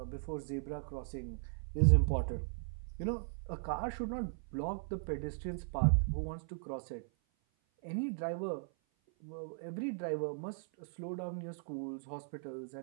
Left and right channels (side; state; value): left; silent; 53 dB below the other